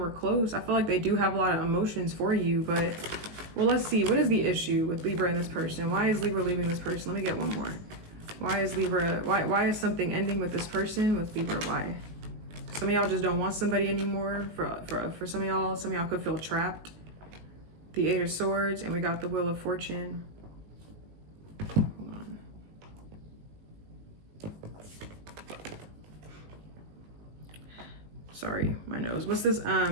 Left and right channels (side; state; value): left; late; 19 ms